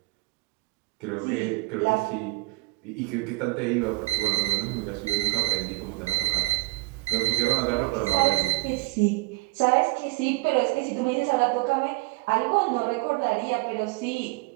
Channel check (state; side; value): quieter; left; 23.1 dB